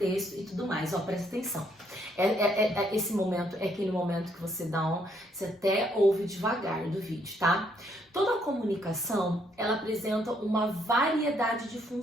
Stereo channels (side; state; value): both; normal; correlation 0.71